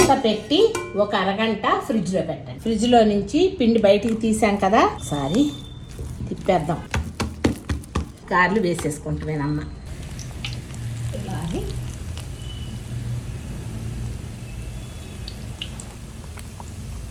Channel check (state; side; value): identical; both; correlation 1.00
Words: పెట్టి ఒక అరగంట ఫ్రిడ్జ్లో పెట్టండి. ఫ్రిడ్జ్లో నుంచి పిండి బయటికి తీసాం కదా, ఒకసారి తిప్పేద్దాం. గారెలు వేసేసుకుంటామేనమ్మ. ఇలాగే